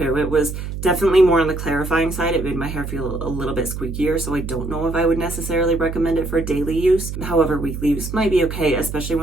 It was definitely more on the clarifying side. It made my hair feel a little bit squeakier, so I don't know if I would necessarily recommend it for daily use. However, weekly use might be okay, especially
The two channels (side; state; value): right; noise; hum, 7 dB below the sound